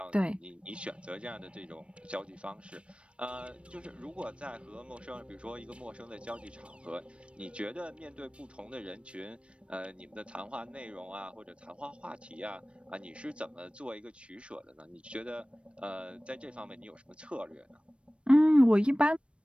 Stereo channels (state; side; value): late; left; 0.060 ms